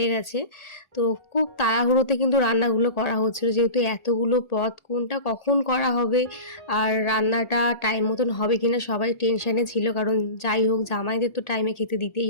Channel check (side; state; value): right; late; 1.4 ms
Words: গেছে। তো খুব তাড়াহুড়োতে কিন্তু রান্নাগুলো করা হচ্ছিলো, যেহেতু এতগুলো পদ কোনটা কখন করা হবে আর রান্নাটা টাইম মতন হবে কিনা সবাই টেনশানে ছিল, কারণ যাই হোক জামাইদের তো টাইমে খেতে দিতেই